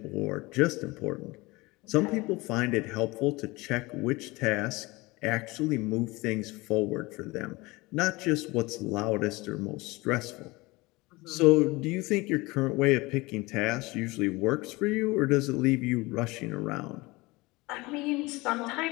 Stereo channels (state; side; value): quieter; right; 22.6 dB